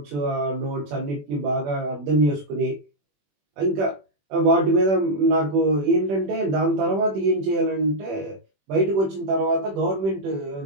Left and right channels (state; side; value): late; left; 21 ms